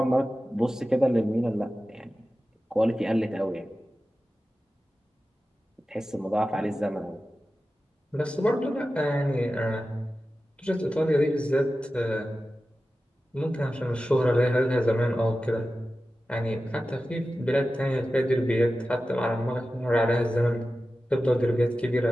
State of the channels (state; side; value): normal; both; correlation 0.94